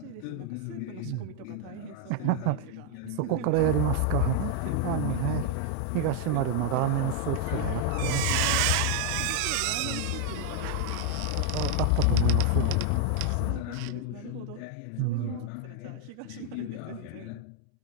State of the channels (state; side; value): different; both; correlation 0.01